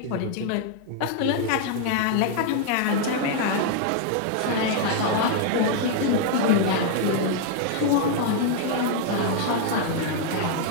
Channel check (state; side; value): different; both; correlation 0.00